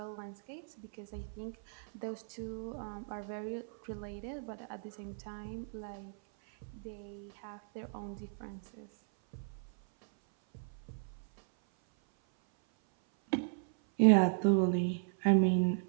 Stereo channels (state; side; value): silent; left; 54 dB below the other